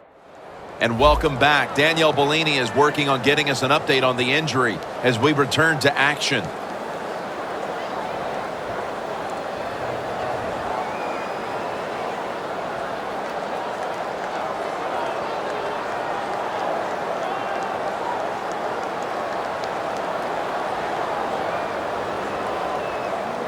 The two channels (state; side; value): identical; both; correlation 1.00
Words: And welcome back. Danielle Bellini is working on getting us an update on the injury as we return to action.